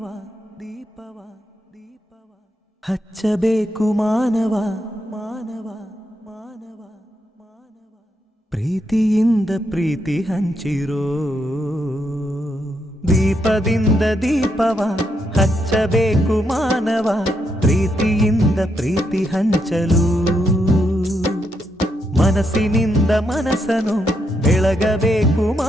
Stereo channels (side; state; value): both; normal; correlation 0.80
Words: ದೀಪವ ದೀಪವ ಹಚ್ಚಬೇಕು ಮಾನವ ಮಾನವ ಮಾನವ ಮಾನವ ಪ್ರೀತಿಯಿಂದ ಪ್ರೀತಿ ಹಂಚಿರೋ ದೀಪದಿಂದ ದೀಪವ ಹಚ್ಚಬೇಕು ಮಾನವ ಪ್ರೀತಿಯಿಂದ ಪ್ರೀತಿ ಹಂಚಲು ಮನಸ್ಸಿನಿಂದ ಮನಸ್ಸನು ಬೆಳಗಬೇಕು